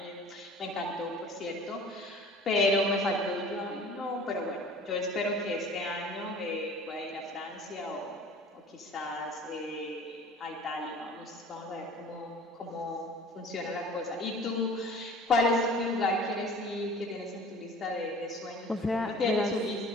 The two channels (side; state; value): both; normal; correlation 0.45